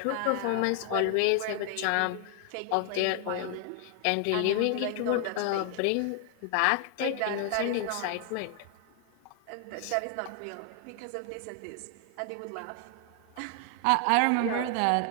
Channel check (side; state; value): both; different; correlation 0.00